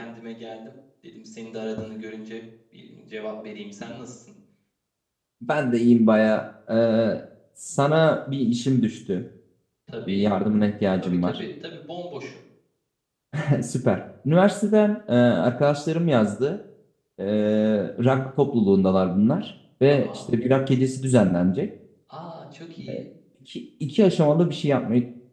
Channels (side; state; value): both; identical; correlation 1.00